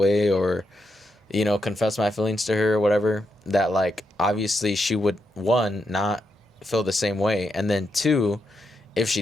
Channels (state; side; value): normal; both; correlation 0.82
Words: or, you know, confess my feelings to her or whatever, that like obviously she would, one, not feel the same way, and then two, if she